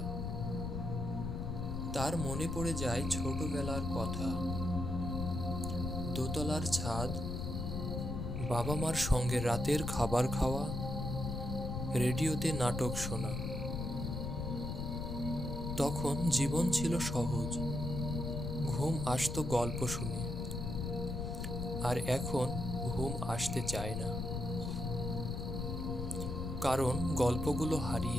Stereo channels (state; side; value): noise; left; rumble, 3 dB below the sound